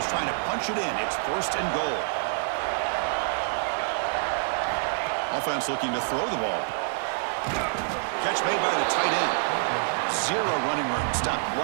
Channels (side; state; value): left; silent; digital silence